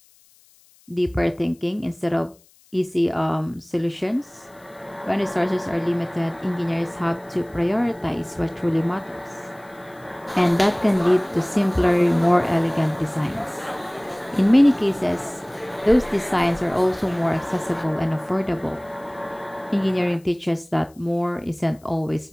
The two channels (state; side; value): noise; left; hiss, 30 dB below the sound